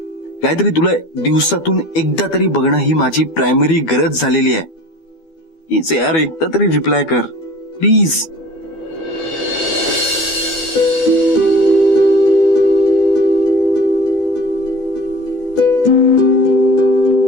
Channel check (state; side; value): late; right; 12 ms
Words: गायत्री, तुला दिवसातून एकदा तरी बघणं ही माझी प्रायमरी गरज झालेली आहे. प्लीज यार, एकदा तरी रिप्लाय कर प्लीज.